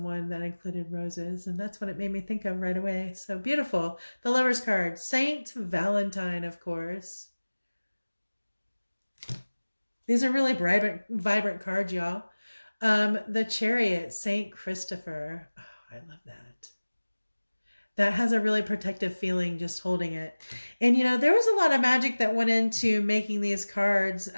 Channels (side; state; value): both; inverted; correlation -1.00